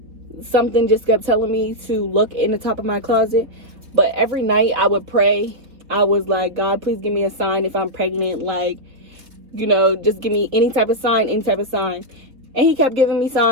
something just kept telling me to look in the top of my closet. But every night I would pray. I was like, God, please give me a sign if I'm pregnant. Like, you know, just give me any type of sign. And he kept giving me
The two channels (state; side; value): late; left; 3.4 ms